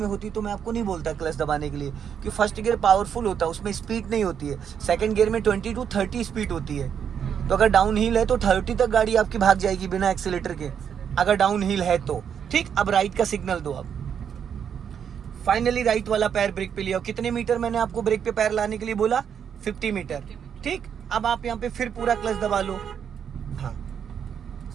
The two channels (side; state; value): left; quieter; 8.0 dB